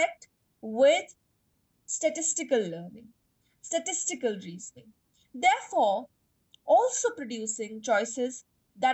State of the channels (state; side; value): identical; both; correlation 1.00